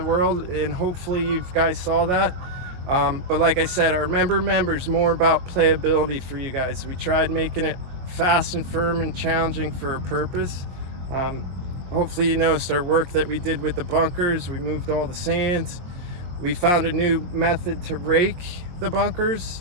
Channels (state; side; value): late; left; 22 ms